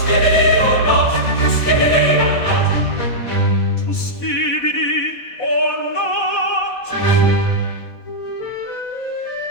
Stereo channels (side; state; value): right; late; 4.1 ms